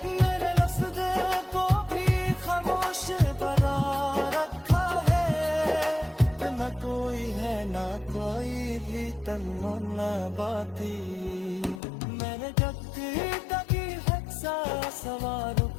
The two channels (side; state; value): right; drops out; at 11.8 s